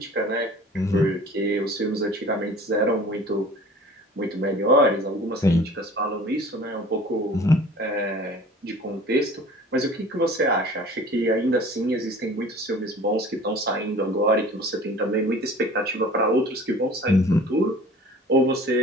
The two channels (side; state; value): both; normal; correlation 0.45